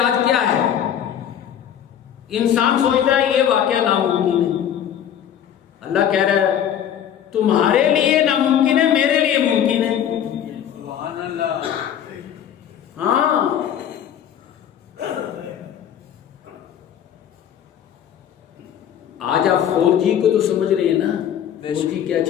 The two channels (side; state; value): right; quieter; 9.7 dB